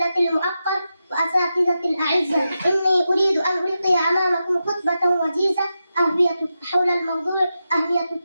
المؤقر وأساتذة الأعزة، إني أريد أن ألقي أمامكم خطبة وجيزة حول الموضوع أهمية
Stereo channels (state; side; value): inverted; both; correlation -0.89